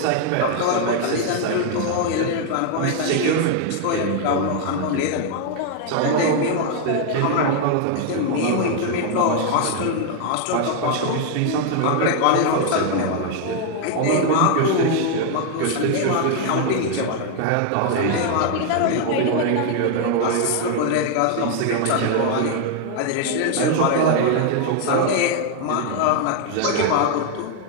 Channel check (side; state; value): both; different; correlation 0.00